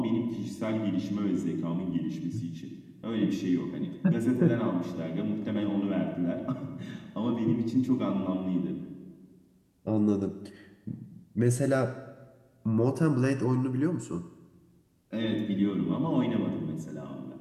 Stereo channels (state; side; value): identical; both; correlation 1.00